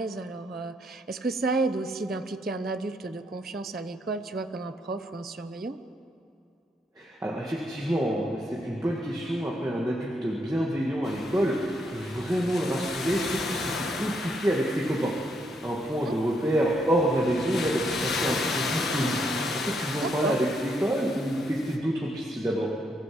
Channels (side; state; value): both; normal; correlation 0.76